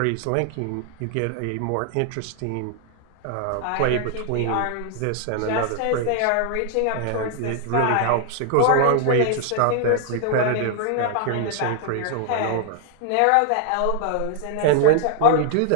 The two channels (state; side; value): different; both; correlation 0.00